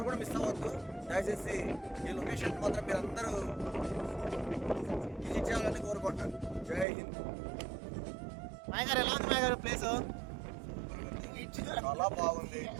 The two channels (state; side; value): drops out; left; at 6.9 s